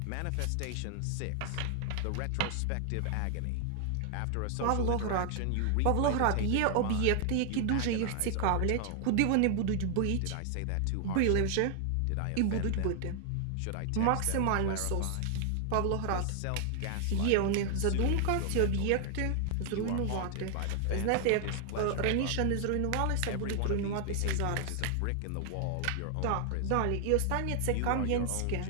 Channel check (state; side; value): different; both; correlation 0.00